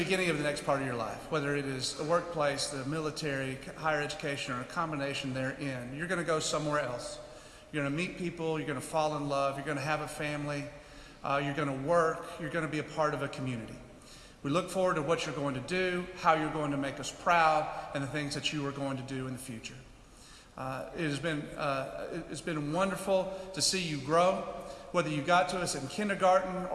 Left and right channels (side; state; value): both; identical; correlation 1.00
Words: of the next part of your life, whether it is the workplace, the military, higher education, or a combination therein. You're going to go somewhere else. You're going to meet people. You're going to fall in love. You're going to have a family. You're going to work. You're going to be a part of a community. We look forward to what you're going to do, how you're going to make us proud, and the things that you are going to do in the future. It's been wonderful to see you grow, whether you got to us in kindergarten